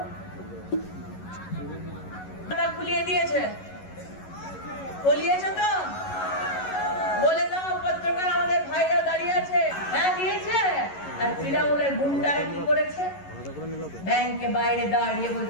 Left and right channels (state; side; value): late; right; 11 ms